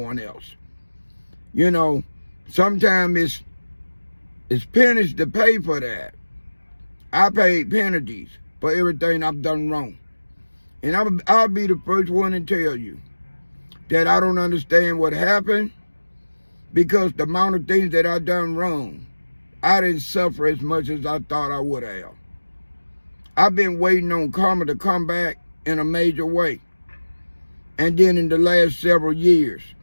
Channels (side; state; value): both; inverted; correlation -1.00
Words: else. You know, sometimes it's pennies to pay for that. I paid penalties for everything I've done wrong. And I'll be the first one to tell you that I don't understand what happened, because the amount of things that I done wrong, I didn't suffer as much as I thought I would have. I've been waiting on karma to come back in a major way. And then in the last several years,